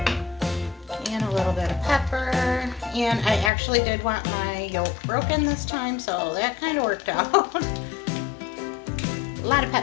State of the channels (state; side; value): drops out; right; at 3.5 s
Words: And a little bit of pepper. And I actually did want my yolk broken this time, so that kind of worked out. A lot of